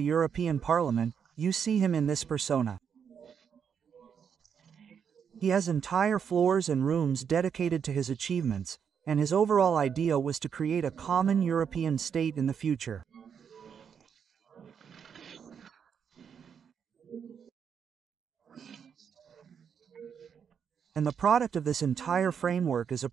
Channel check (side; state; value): left; quieter; 7.3 dB